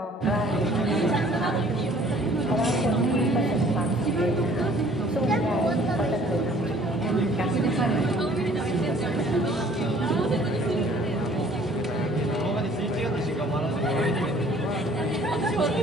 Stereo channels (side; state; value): both; normal; correlation 0.55